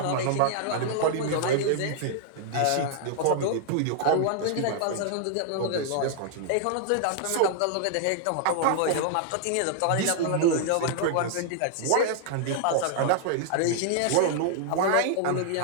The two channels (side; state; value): both; different; correlation -0.01